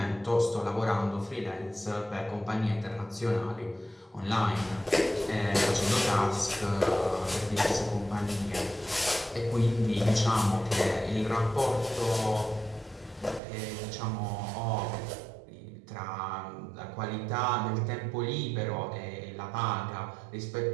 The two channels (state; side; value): drops out; left; at 13.4 s